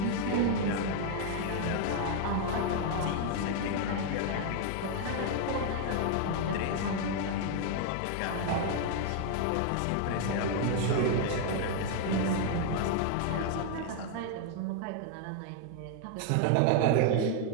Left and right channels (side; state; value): both; different; correlation 0.00